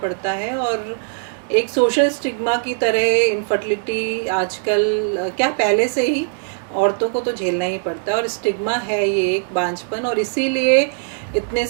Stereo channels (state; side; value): silent; left; digital silence